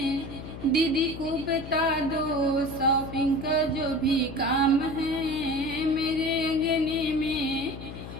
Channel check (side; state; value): left; noise; hum, 11 dB below the sound